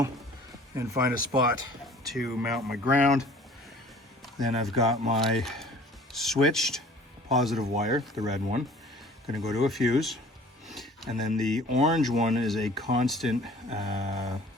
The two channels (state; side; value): normal; both; correlation 0.49